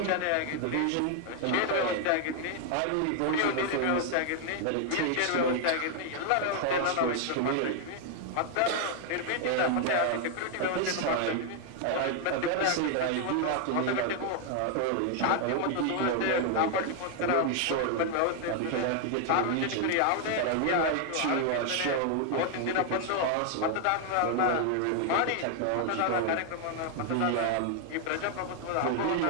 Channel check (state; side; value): different; both; correlation 0.00